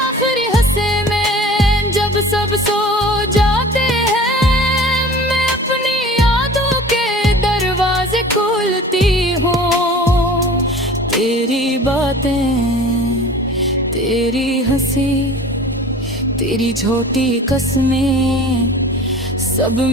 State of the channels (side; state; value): both; normal; correlation 0.42